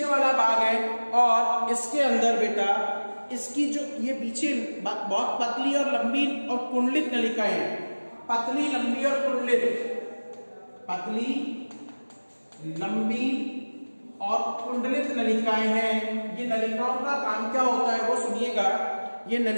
वाला भाग है और इसके अंदर बेटा इसकी जो ये पीछे बहुत पतली और लंबी और कुंडलित नलिकाएं हैं। पतली, लंबी और कुंडलित, पतली, लंबी और कुंडलित नलिकाएं हैं। ये नलिकाओं का काम क्या होता है वो सुनिएगा। ये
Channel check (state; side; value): inverted; both; correlation -1.00